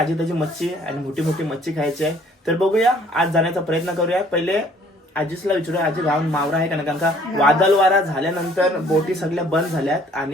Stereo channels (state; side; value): normal; both; correlation 0.58